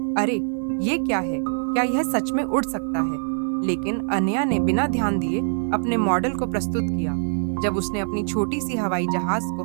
अरे ये क्या है, क्या यह सच में उड़ सकता है? लेकिन अनया ने बिना ध्यान दिए अपने मॉडल को प्रस्तुत किया। जब उसने अपनी छोटी सी हवाई जहाज को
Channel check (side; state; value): left; silent; digital silence